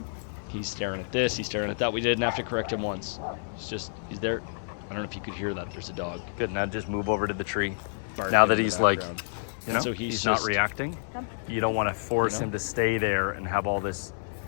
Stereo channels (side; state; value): right; silent; 59 dB below the other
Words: He's staring at this, he's staring at that. We didn't have to correct him once. He's there. I don't know if you could hear that. There's a dog. Good, now just move over to the tree. Now that he's like, so he's not reacting. You don't want to force him to stay there and have all this